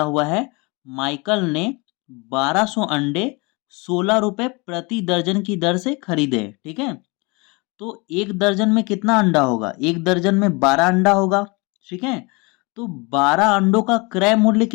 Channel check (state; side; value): quieter; right; 27.9 dB